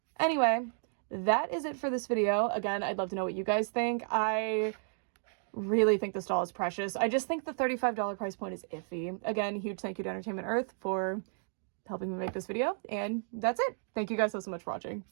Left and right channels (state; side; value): silent; left; digital silence